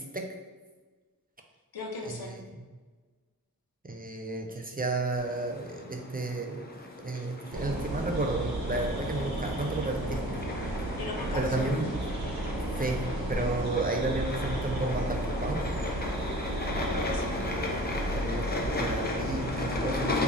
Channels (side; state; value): both; normal; correlation 0.42